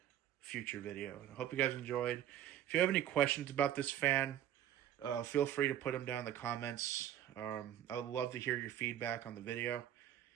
future video. I hope you guys enjoyed. If you have any questions about this fan, feel free to put them down in the comments. I would love to hear your feedback on the video.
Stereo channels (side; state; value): left; quieter; 11.2 dB